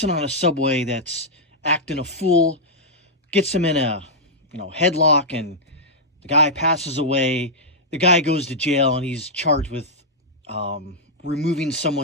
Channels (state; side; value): normal; both; correlation -0.08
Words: on a subway that's acting a fool, gets him in a headlock, and the guy passes away. The guy goes to jail, and he's charged with removing